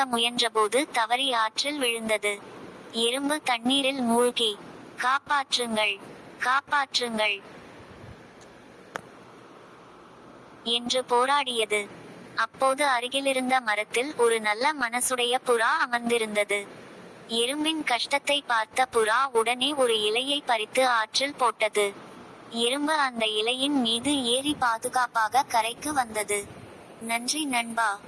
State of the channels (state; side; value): identical; both; correlation 1.00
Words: முயன்றபோது தவறி ஆற்றில் விழுந்தது. எறும்பு தண்ணீரில் மூழ்கி, காப்பாற்றுங்கள், காப்பாற்றுங்கள் என்று போராடியது. அப்போது அருகிலிருந்த மரத்தில் ஒரு நல்ல மனசுடைய புறா அமர்ந்திருந்தது. எறும்பின் கஷ்டத்தை பார்த்த புறா உடனே ஒரு இலையை பறித்து ஆற்றில் போட்டது. எறும்பு அந்த இலையின் மீது ஏறி பாதுகாப்பாக கரைக்கு வந்தது. நன்றி நண்பா